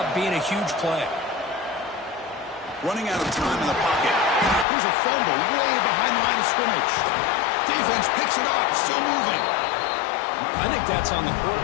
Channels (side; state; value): right; drops out; at 4.7 s